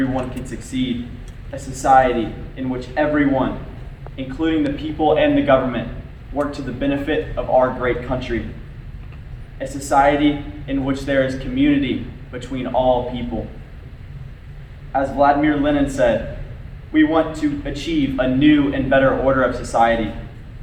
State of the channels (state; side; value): identical; both; correlation 1.00